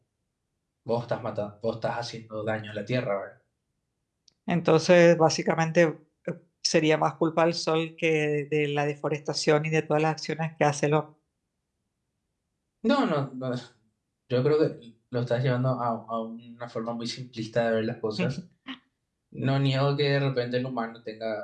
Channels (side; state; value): both; identical; correlation 1.00